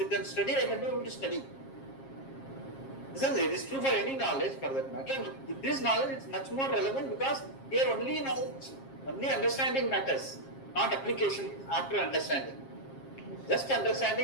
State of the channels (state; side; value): late; right; 7.4 ms